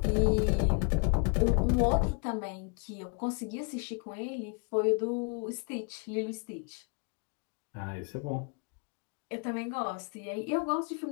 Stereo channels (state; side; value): quieter; right; 36.8 dB